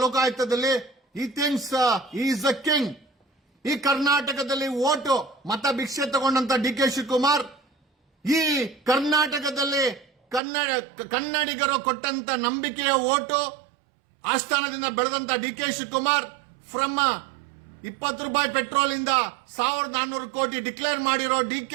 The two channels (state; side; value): drops out; left; at 10.4 s